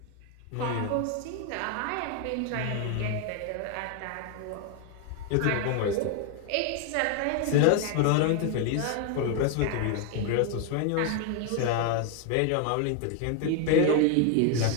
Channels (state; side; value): different; both; correlation 0.01